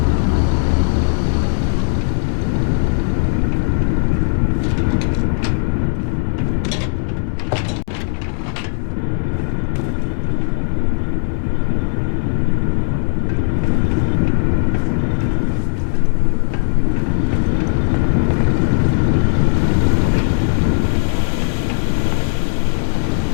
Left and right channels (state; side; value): silent; right; digital silence